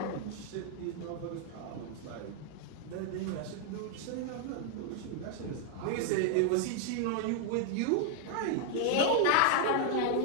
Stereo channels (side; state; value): both; different; correlation 0.00